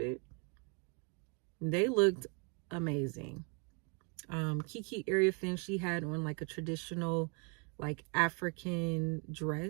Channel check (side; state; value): left; quieter; 35.6 dB